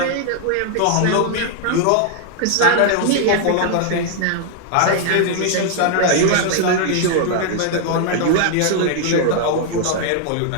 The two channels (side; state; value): both; different; correlation 0.00